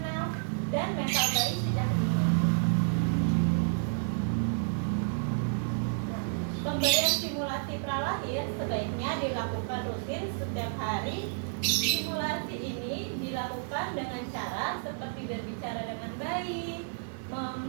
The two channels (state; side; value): silent; left; 57 dB below the other